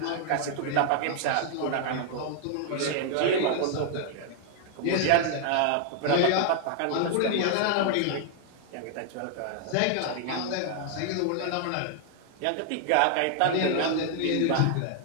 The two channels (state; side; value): different; both; correlation 0.00